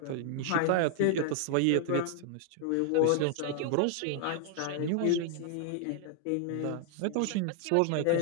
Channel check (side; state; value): both; different; correlation 0.00